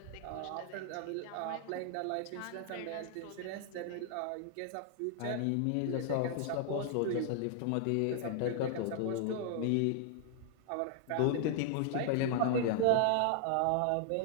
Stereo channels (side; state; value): both; different; correlation 0.00